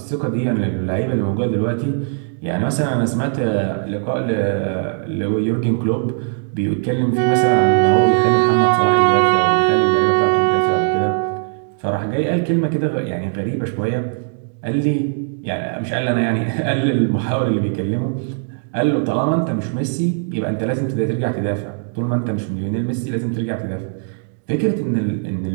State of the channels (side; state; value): left; silent; digital silence